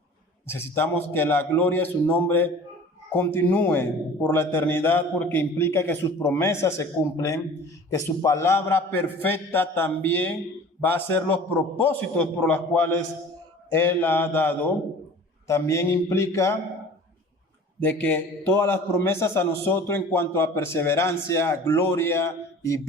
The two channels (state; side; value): normal; both; correlation 0.44